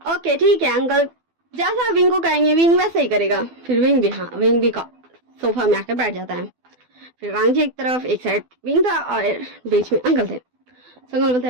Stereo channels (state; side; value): late; left; 12 ms